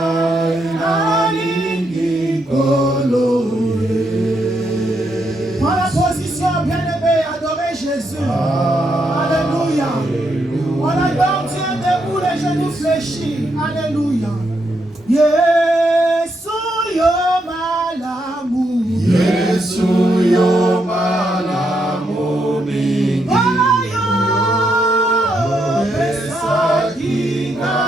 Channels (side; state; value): both; normal; correlation 0.79